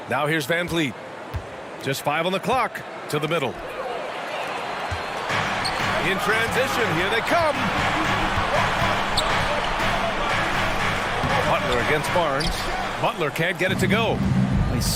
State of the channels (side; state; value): both; identical; correlation 1.00